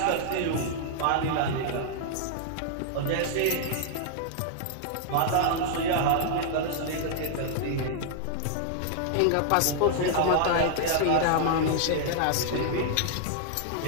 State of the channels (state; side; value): different; both; correlation -0.01